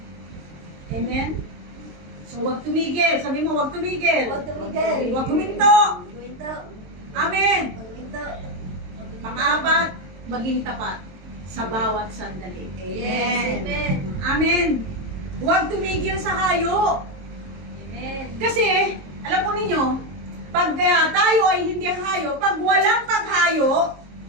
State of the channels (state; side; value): late; left; 22 ms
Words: Amen? So, huwag tumigil. Sabi mo, huwag tumigil. Huwag tumigil. Huwag huminto. Huminto. Amen. Huminto. Pang-apat, maging tapat sa bawat sandali. Yes. Amen. Amen. Huwag tumigil sa hayo. Amen. Kasi, alam po ninyo, pag tayo ay hindi hayo, pag walang paghayo,